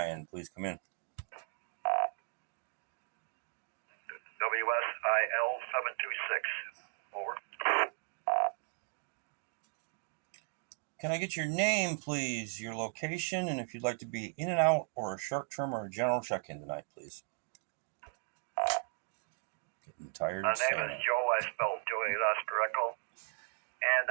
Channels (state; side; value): silent; left; 54 dB below the other